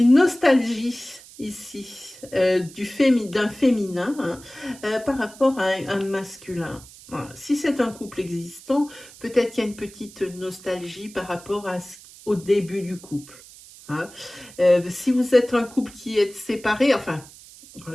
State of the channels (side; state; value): right; noise; hiss, 20 dB below the sound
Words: nostalgie ici, d'un féminin hein, par rapport à un masculin. Voilà. Si c'est un couple existant, peut-être qu'il y a une petite nostalgie par rapport au début du couple. Hein. Si vous êtes un couple qui est séparé, enfin,